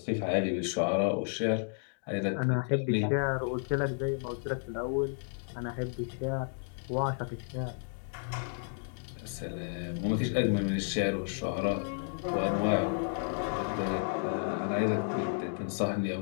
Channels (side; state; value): right; silent; 56 dB below the other